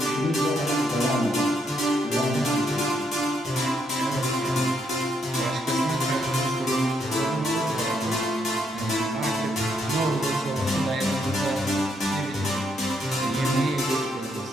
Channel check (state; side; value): normal; both; correlation 0.76